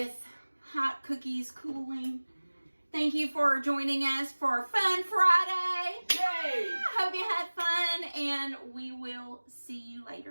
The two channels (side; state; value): both; inverted; correlation -1.00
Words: hot cookies cooling. Thank you for joining us for Fun Friday. Yay! Hope you had fun, and we will see you